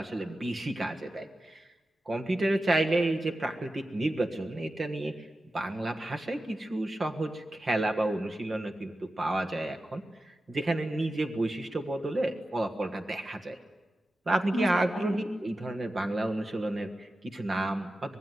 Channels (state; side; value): normal; both; correlation 0.93